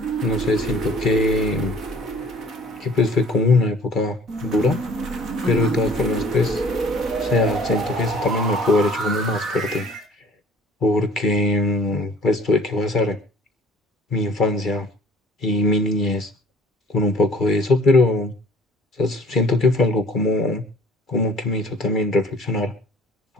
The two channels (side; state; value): both; normal; correlation 0.52